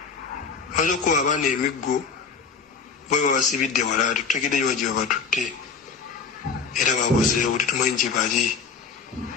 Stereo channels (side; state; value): right; quieter; 5.5 dB